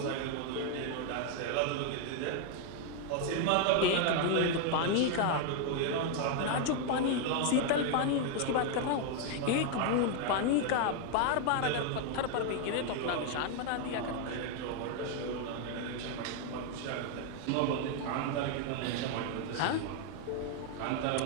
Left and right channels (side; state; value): both; different; correlation 0.00